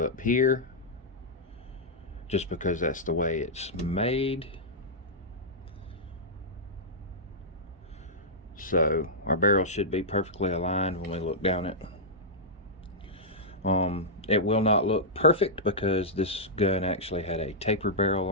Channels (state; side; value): normal; both; correlation -0.10